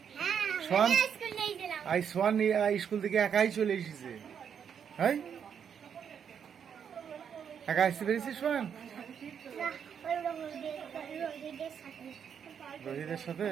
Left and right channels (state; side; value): quieter; left; 7.7 dB